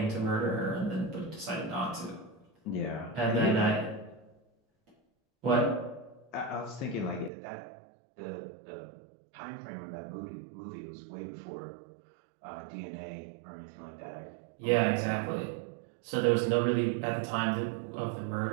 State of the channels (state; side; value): drops out; left; at 7.3 s